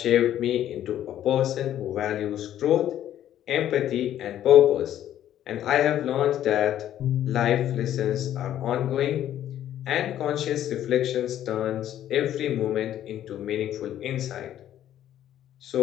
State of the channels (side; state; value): right; quieter; 11.6 dB